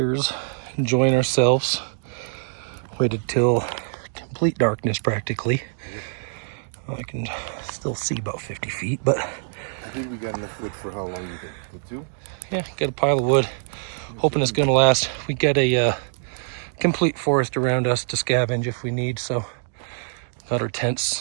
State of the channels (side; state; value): left; silent; digital silence